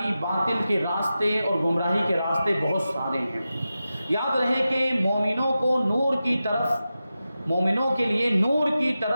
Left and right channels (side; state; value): both; inverted; correlation -0.92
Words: باطل کے راستے اور گمراہی کے راستے بہت سارے ہیں۔ یاد رہے کہ مومنوں کو نور کی طرف، مومنوں کے لیے نور کی